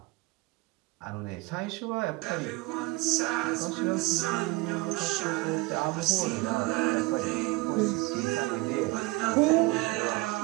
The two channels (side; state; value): left; quieter; 23.0 dB